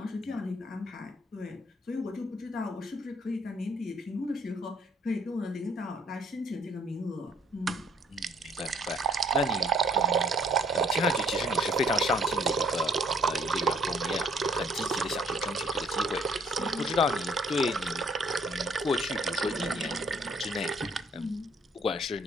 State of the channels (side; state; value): both; normal; correlation 0.63